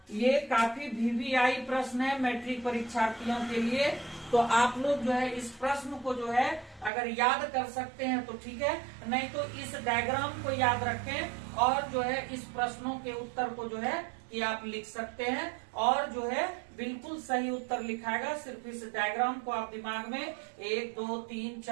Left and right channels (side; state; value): left; drops out; at 6.9 s